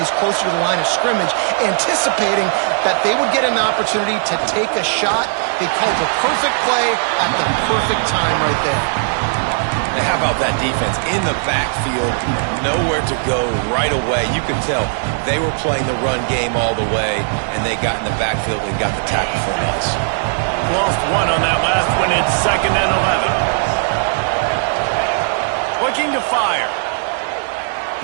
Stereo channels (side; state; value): left; silent; 68 dB below the other